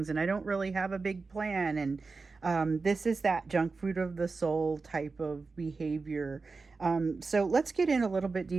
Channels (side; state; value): left; quieter; 4.2 dB